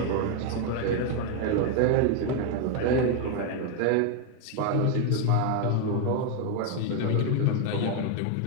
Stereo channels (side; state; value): both; different; correlation 0.01